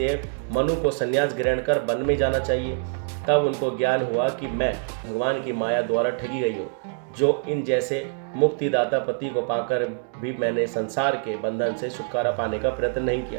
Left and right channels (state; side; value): silent; left; digital silence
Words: मनु को संन्यास ग्रहण कर वन में जाना चाहिए। तब उनको ज्ञान हुआ कि मैं भगवान की माया द्वारा ठगी गई हूँ, जो इन जैसे मुक्तिदाता पति को पाकर भी मैंने संसार के बंधन से छुटकारा पाने का प्रयत्न नहीं